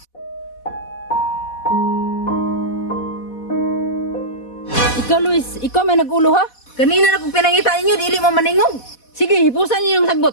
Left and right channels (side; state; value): right; late; 4.1 ms